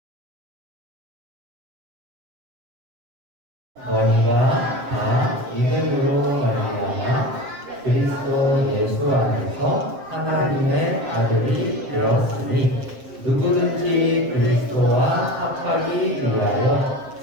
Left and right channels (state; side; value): late; left; 7.5 ms